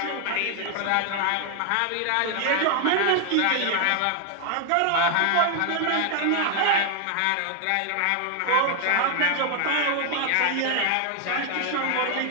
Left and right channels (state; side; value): different; both; correlation 0.01